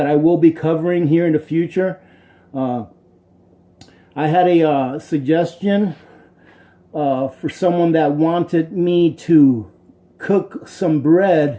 I will be covering here in the future. I had a suggestion for someone that wanted me to cook some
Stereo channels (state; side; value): identical; both; correlation 1.00